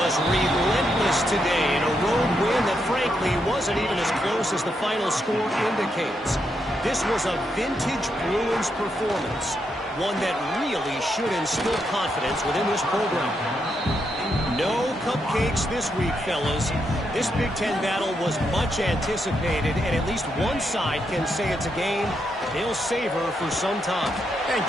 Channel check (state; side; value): normal; both; correlation 0.81